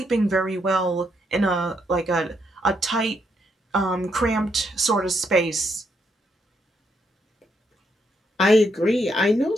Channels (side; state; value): both; normal; correlation 0.77